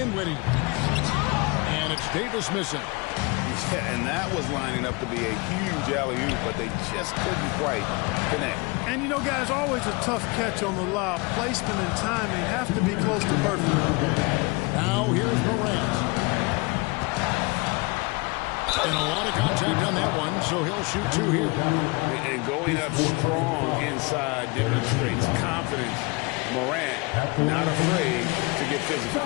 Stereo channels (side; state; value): right; quieter; 27.5 dB